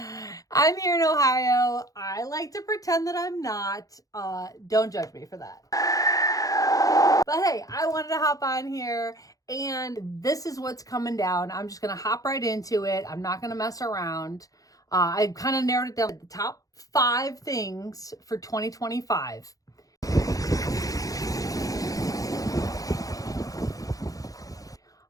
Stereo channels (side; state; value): right; late; 0.17 ms